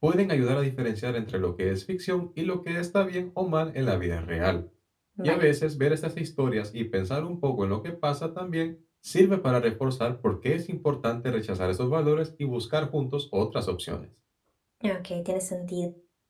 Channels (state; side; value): identical; both; correlation 1.00